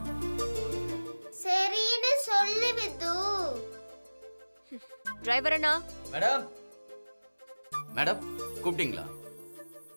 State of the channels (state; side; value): inverted; both; correlation -1.00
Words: சரின்னு சொல்லு with. Driver Anna. Madam madam கூப்பிட்டீங்களா?